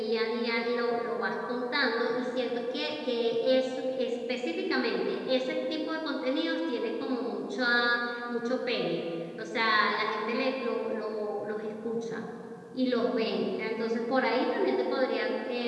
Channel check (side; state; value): both; identical; correlation 1.00